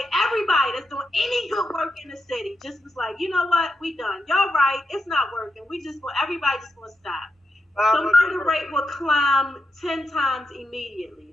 everybody that's doing any good work in the city just was like, you know what, we done. Y'all right, it's not working. Everybody just gonna stop. The murder rate will climb 10 times immediately.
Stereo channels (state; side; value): normal; both; correlation 0.84